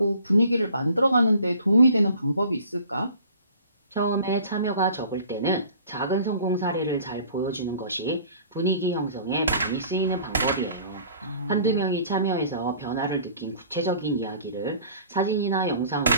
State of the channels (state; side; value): inverted; both; correlation -0.49